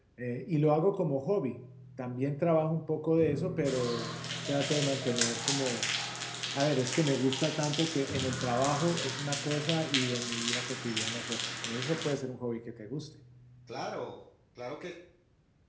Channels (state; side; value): identical; both; correlation 1.00